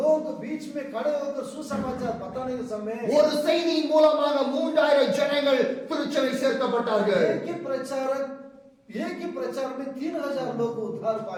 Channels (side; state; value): both; identical; correlation 1.00